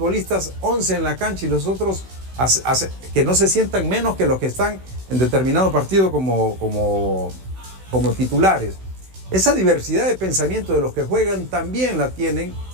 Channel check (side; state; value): left; late; 16 ms